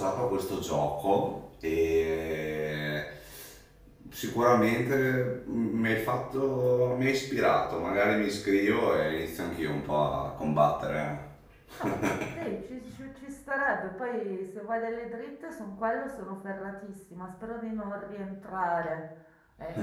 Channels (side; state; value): both; identical; correlation 1.00